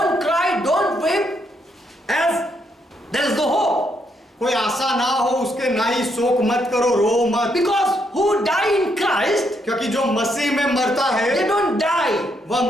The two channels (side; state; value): both; normal; correlation 0.76